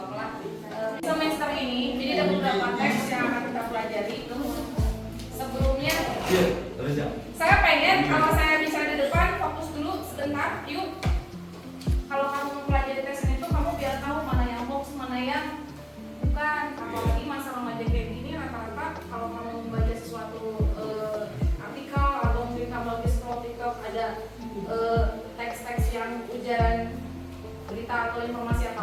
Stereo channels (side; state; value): both; identical; correlation 1.00